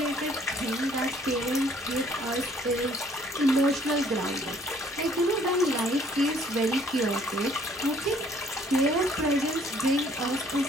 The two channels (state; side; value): normal; both; correlation 0.61